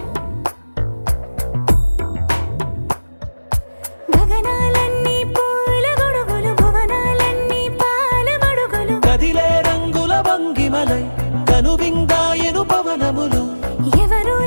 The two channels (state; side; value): inverted; both; correlation -1.00